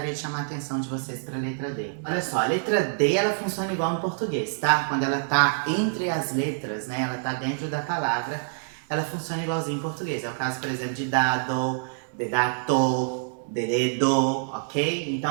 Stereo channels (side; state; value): left; silent; 61 dB below the other